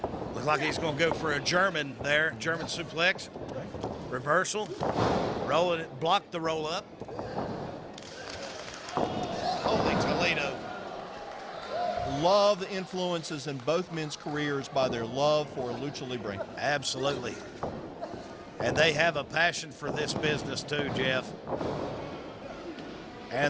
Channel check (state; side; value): identical; both; correlation 1.00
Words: Looks like he's going to go for a German there. German suplex. Reversal. Roll it. Block the roll up. Holy Toledo. Love the influences in both men's careers by their love for Lucha Libre. Absolutely. And they have a passion for this business too, Jeff.